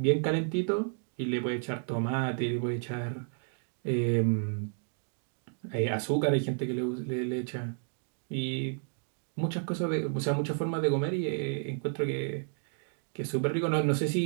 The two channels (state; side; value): silent; left; 57 dB below the other